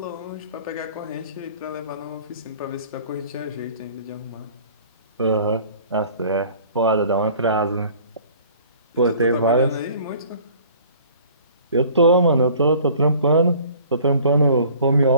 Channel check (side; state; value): both; inverted; correlation -0.50